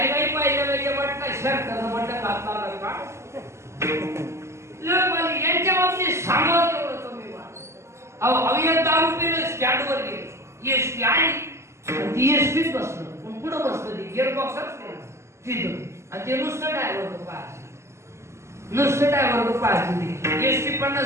पाहिजे वाटतं शर्ट म्हटलं घातला का यांच्या बाबतीत सांगावं तेवढं कमी वाट. अहो दारू पिलं स्टँडवर गेले, एसटी आली ती एसटीत बसलं, पण पुढं बसलं ते गिअर बॉक्सच तिथं, आणि ते नुसतं ड्रायव्हर पाहायचे. एसटी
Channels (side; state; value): left; late; 0.13 ms